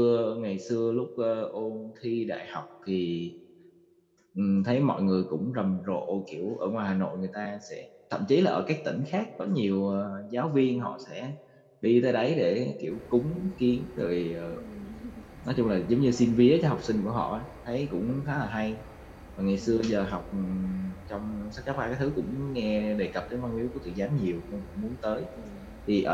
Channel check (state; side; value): identical; both; correlation 1.00